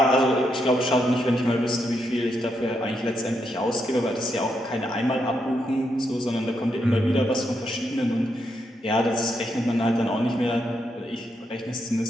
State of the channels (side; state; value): both; normal; correlation 0.81